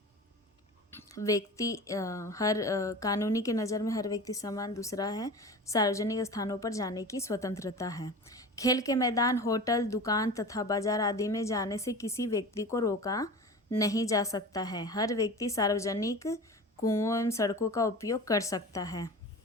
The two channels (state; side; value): normal; both; correlation 0.33